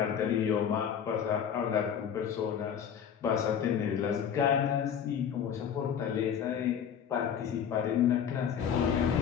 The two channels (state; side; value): quieter; right; 8.2 dB